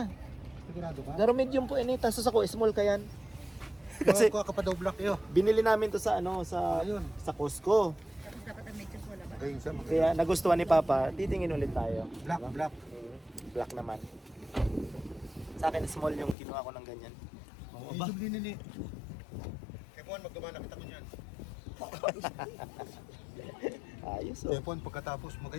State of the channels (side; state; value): right; drops out; at 16.4 s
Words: Sigurado ka? Pero medium po ini. Tapos ako small kayan. Kasi Kuha ka pa daw black iyo. binili namin to sa Ayun. sa Costco. Dapat ang medyo wala ba? Ayun siya. Kaya nagustuhan ni Papa. Titingin ulit tayo. Black, black. Black naman. Sa akin small yung kinuha ko ng ganyan. Oo, ba? Medium din ni. Kepon, magdumana kita ko niyan. Ayos oh. Kepon, pagkatapos